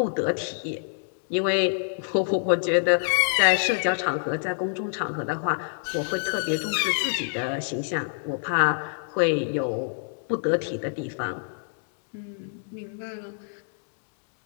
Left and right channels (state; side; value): silent; right; digital silence